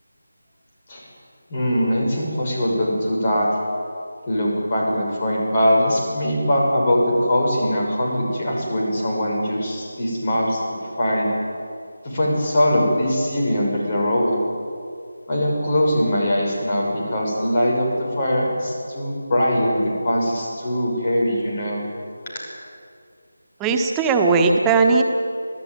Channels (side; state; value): both; inverted; correlation -0.86